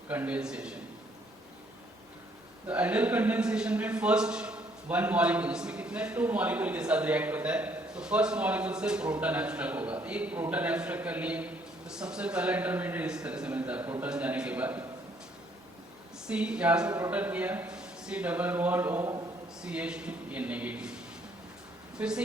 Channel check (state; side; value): normal; both; correlation 0.66